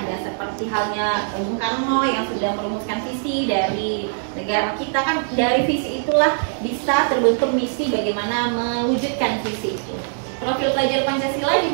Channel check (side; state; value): left; silent; digital silence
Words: Seperti halnya Bung Karno yang sudah merumuskan visi dari negara kita, kan dari visi itulah bisa terbentuk misi bagaimana mewujudkan visi itu. Profil pelajar Pancasila